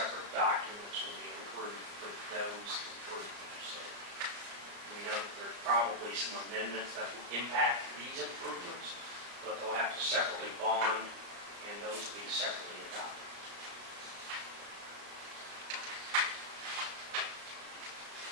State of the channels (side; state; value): left; late; 34 ms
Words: documents will be approved for those improvements. So we know that there's probably some amendments that will impact these improvements, but they'll have to separately bond, and those will be separately adopted.